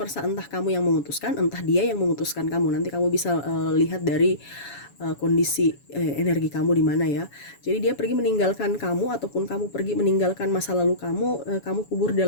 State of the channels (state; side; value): late; right; 7.1 ms